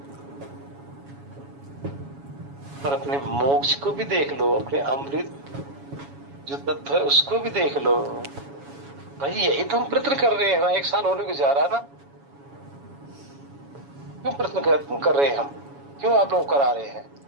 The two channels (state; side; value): late; left; 7.2 ms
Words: और अपने मोक्ष को भी देख लो, अपने अमृत जो तत्व है उसको भी देख लो। भाई यही तो हम प्रयत्न कर रहे हैं ना, 1 साल होने को जा रहा है ना। क्यों प्रयत्न कर रहे हैं हम? क्यों आप लोग करा रहे हैं?